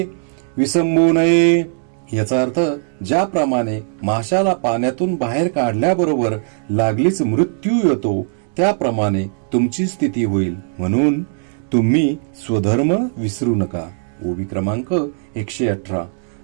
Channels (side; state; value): left; silent; digital silence